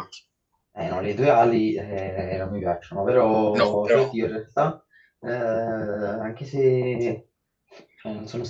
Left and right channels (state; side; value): identical; both; correlation 1.00